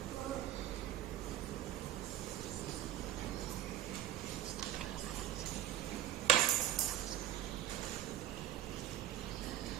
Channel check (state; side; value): quieter; left; 12.2 dB